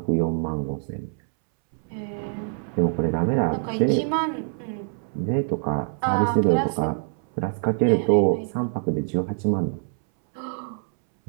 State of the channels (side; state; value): left; silent; 62 dB below the other